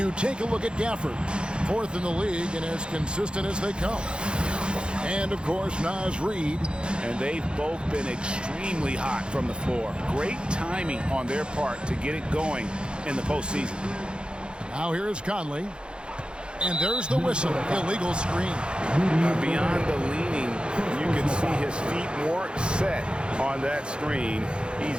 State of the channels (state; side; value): late; left; 0.053 ms